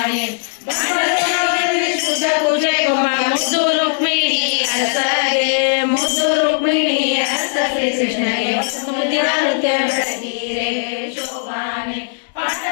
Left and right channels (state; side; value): silent; right; digital silence